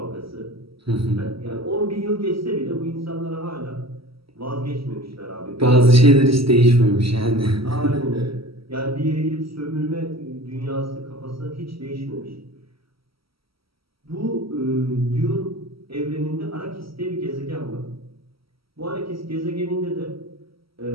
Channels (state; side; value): late; left; 0.75 ms